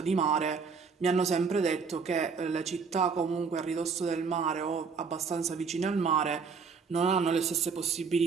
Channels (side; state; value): left; quieter; 5.4 dB